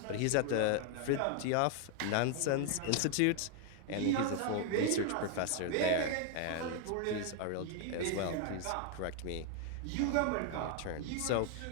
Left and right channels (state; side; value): different; both; correlation 0.00